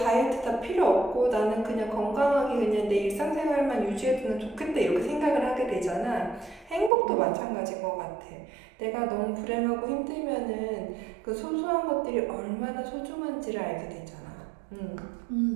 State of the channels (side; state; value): left; drops out; at 6.9 s